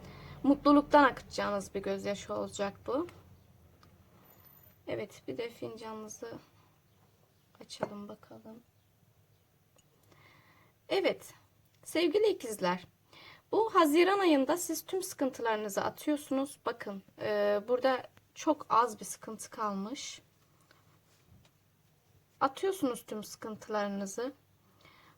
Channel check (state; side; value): identical; both; correlation 1.00